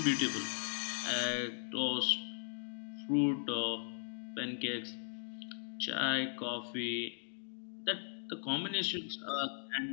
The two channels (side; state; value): right; silent; digital silence